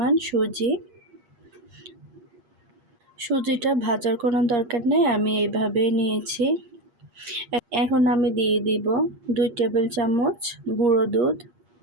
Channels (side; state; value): left; late; 8.5 ms